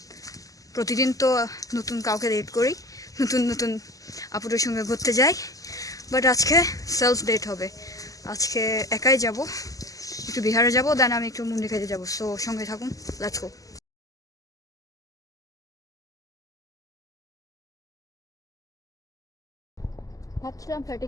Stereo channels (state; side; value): late; right; 0.17 ms